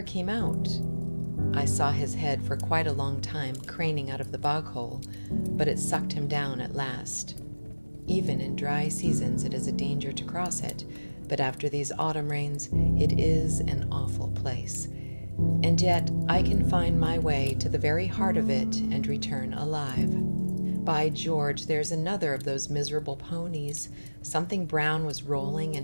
came out. I saw his head for quite a long time craning out of the bog hole, but it sucked him down at last. Even in dry seasons it is a danger to cross it, but after these autumn rains it is an awful place. And yet I can find my way to the very heart of it and return alive. By George, there's another of those miserable ponies. Something brown was rolling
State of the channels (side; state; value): both; inverted; correlation -1.00